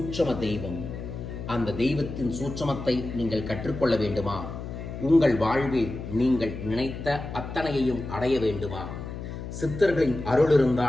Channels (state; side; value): noise; left; hum, 8 dB below the sound